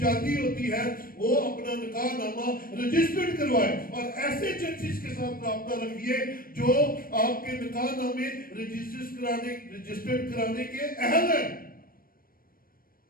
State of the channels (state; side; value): late; right; 0.42 ms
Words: ہوتی ہے وہ اپنا نکاح نامہ رجسٹرڈ کروائے. اور ایسے چرچز کے ساتھ رابطہ رکھیے جو آپ کے نکاح نامے رجسٹرڈ کرانے کے اہل ہیں،